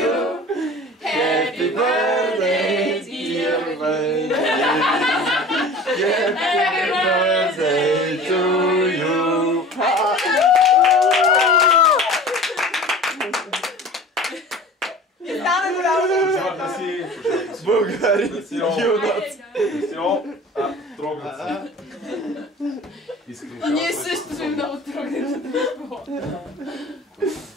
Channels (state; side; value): normal; both; correlation 0.41